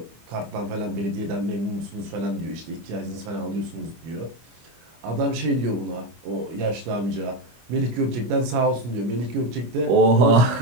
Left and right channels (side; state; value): left; late; 25 ms